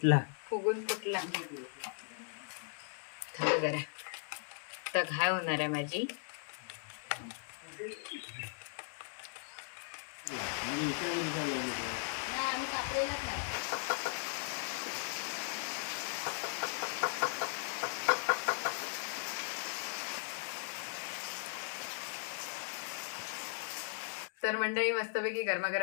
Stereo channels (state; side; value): silent; right; digital silence